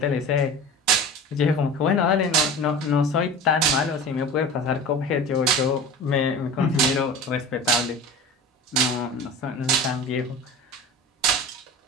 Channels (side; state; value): both; normal; correlation 0.34